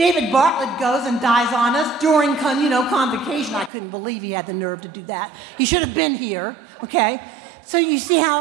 Bartlett goes and dies on us during convocation. I couldn't believe he had the nerve to do that. He should have been here, okay? So you see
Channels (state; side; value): drops out; left; at 3.7 s